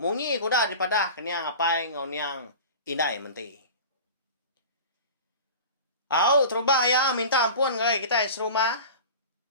Munyi kuda daripada keniang apai ngoniang indai menti. Terubah ya, minta ampun kalau kita serumah.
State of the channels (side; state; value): both; inverted; correlation -0.36